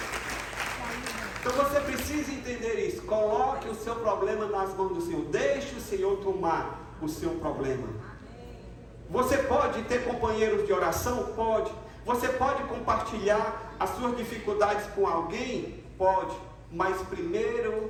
Então você precisa entender isso. Coloque o seu problema nas mãos do Senhor. Deixe o Senhor tomar o seu problema. Você pode ter companheiros de oração? Pode. Você pode compartilhar as suas dificuldades com alguém? Pode. Mas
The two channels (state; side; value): identical; both; correlation 1.00